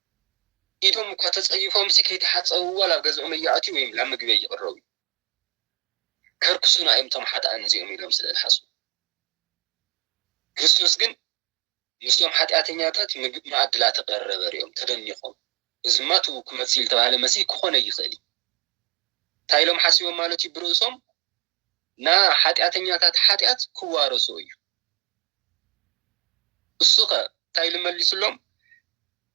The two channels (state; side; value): quieter; left; 28.9 dB